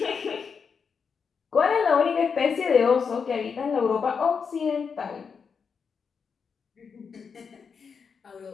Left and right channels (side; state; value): right; quieter; 6.0 dB